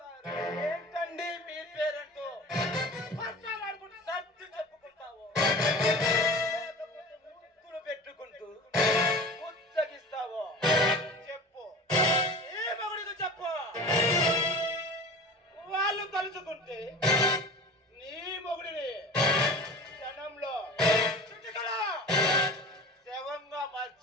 ఏంటండి మీ పేరెంట్తో పచ్చాలాడుకుంటూ సర్ది చెప్పుకుంటావు, ముక్కులు పెట్టుకుంటూ ముచ్చగిస్తావో చెప్పు, ఈ మగుడికి చెప్పు. వాళ్ళు కలుసుకుంటే నీ మొగుడిని క్షణంలో చుట్టుకలా శవంగా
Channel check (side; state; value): both; normal; correlation 0.37